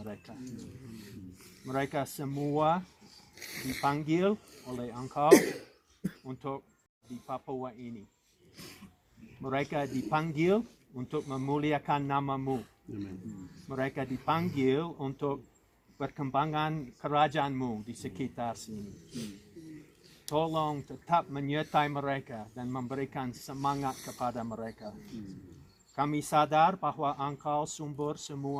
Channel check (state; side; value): identical; both; correlation 1.00